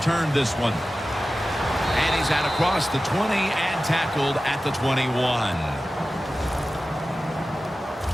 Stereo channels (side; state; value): both; normal; correlation 0.95